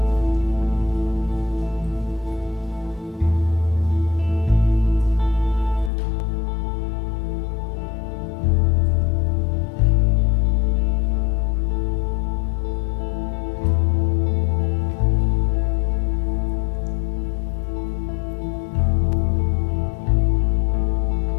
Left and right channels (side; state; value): right; drops out; at 5.9 s